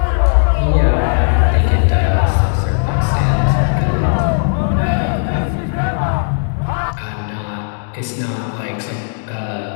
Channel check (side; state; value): right; silent; digital silence